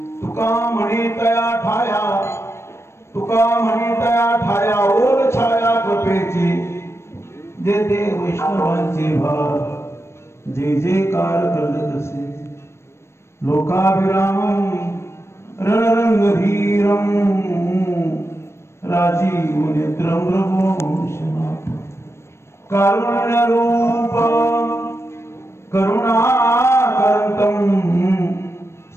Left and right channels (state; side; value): late; right; 0.13 ms